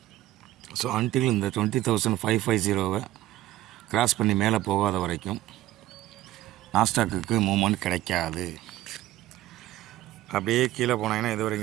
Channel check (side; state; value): left; quieter; 15.1 dB